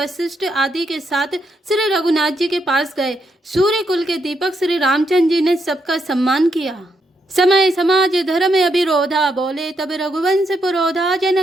आदि के साथ श्री रघुनाथ जी के पास गए। सूर्य कुल के दीपक श्री रामचंद्र जी ने सबका सम्मान किया। समय समाज धर्म अभिरोधा, बोले तब रघुवंश पुरोधा,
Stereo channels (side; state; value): both; normal; correlation 0.79